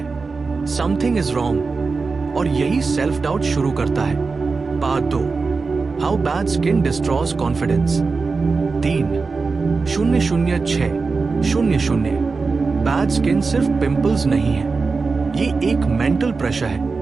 समथिंग इज रॉन्ग, और यही सेल्फ डाउट शुरू करता है। Part 2, how bad skin destroys confidence 300600। Bad skin सिर्फ पिंपल्स नहीं है, ये एक मेंटल प्रेशर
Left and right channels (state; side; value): quieter; left; 4.3 dB